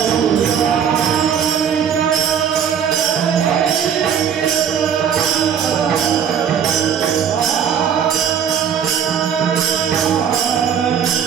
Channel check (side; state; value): left; quieter; 8.0 dB